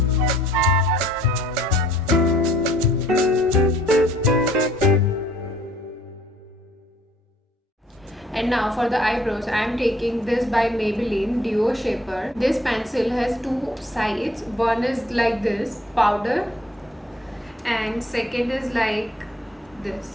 And now for the eyebrows, I am taking this by Maybelline Duo Shaper. This pencil has two sides. One is like this, powder, and second is like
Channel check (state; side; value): normal; both; correlation 0.59